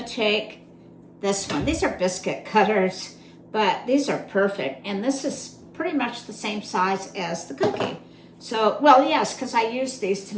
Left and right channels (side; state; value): both; identical; correlation 1.00